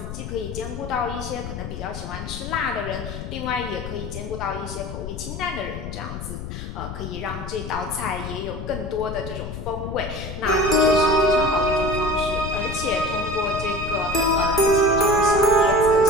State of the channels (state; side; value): noise; left; rumble, 8 dB below the sound